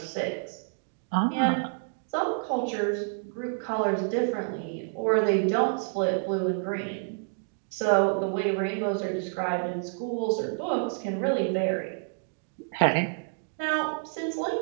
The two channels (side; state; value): left; silent; digital silence